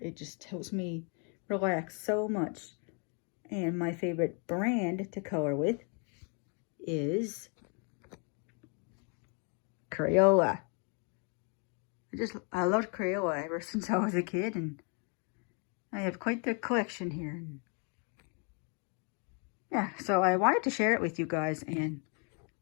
It just helps me relax so much. And my favorite brand to color with is Crayola. I loved Crayola ever since I was a kid, and I have quite the collection here. Yeah, so I wanted to share it with you guys. And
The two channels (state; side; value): quieter; right; 37.7 dB